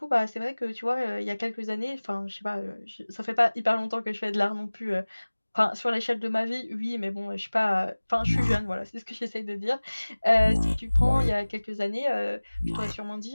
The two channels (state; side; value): inverted; both; correlation -1.00